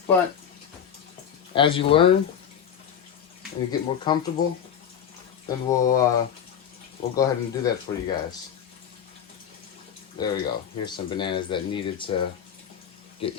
But as you learn and you get more comfortable, then we'll go ahead and do that for you guys. There we go. Here's some bananas that needed to get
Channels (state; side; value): quieter; right; 8.5 dB